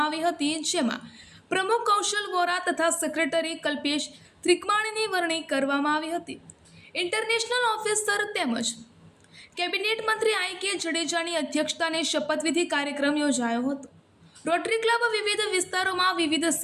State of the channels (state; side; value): identical; both; correlation 1.00